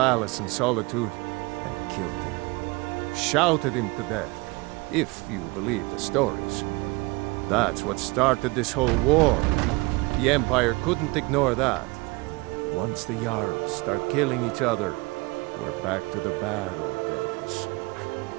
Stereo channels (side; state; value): left; quieter; 25.3 dB